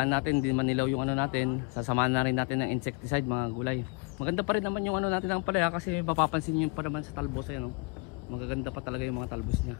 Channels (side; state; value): right; quieter; 31.0 dB